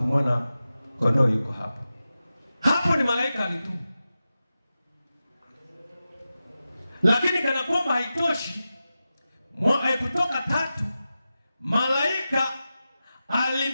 kondoo yuko hapo. Hapo ni malaika alitumwa. Lakini kana kwamba haitoshi, Kutoka 3, malaika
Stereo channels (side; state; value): both; inverted; correlation -0.93